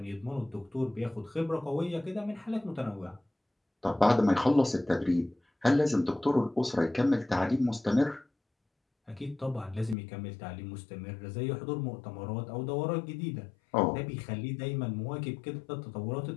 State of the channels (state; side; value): drops out; right; at 10.0 s